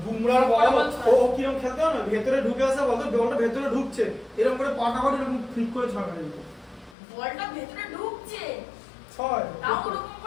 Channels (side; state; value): right; drops out; at 7.0 s